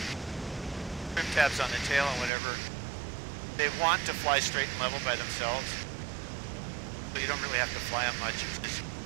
tabs on the tail and whatever, they want to fly straight and level by themselves. So you don't really have to fly them much.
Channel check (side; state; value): left; drops out; at 2.3 s